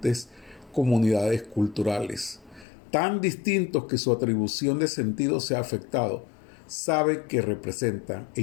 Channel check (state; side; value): drops out; right; at 2.7 s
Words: comunidades culturales, tan distintos que su atribución de sentido se ha afectado. Saben que representan,